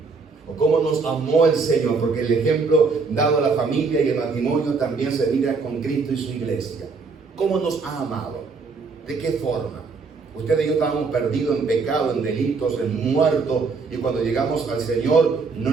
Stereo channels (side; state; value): left; quieter; 4.5 dB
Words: ¿O cómo nos amó el Señor? Porque el ejemplo dado a la familia y el matrimonio también se mira con Cristo y su iglesia. ¿Cómo nos ha amado? ¿De qué forma? Usted y yo estábamos perdidos en pecado, en delitos, en muertos, y cuando llegamos al Señor, no